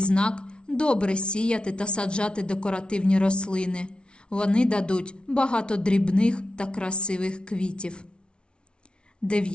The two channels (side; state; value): right; late; 0.057 ms